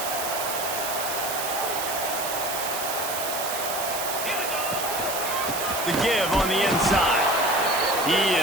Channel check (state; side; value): noise; right; hiss, 4 dB below the sound